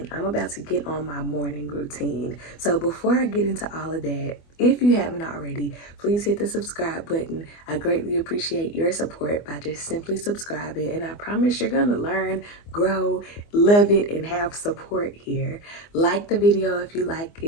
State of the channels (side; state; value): right; late; 24 ms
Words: I'm about to get on my morning routine. So before I get into all of that, if you haven't already, please hit the subscribe button. I greatly appreciate your support by just simply subscribing, and I promise you're gonna learn, grow, love it, and have support here. Like the video if you like